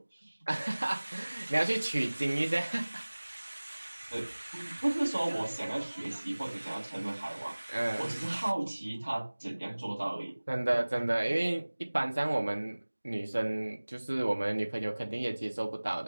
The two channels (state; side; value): inverted; both; correlation -1.00